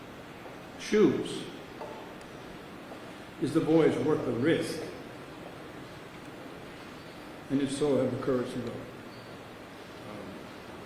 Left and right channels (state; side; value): identical; both; correlation 1.00